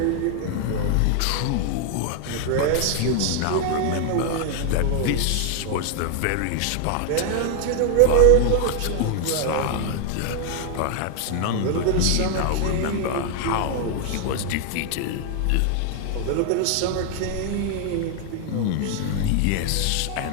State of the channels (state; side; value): different; both; correlation 0.00